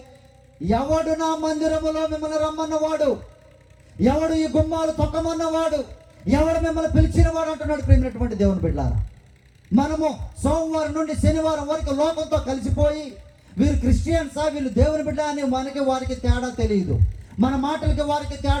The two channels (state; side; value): identical; both; correlation 1.00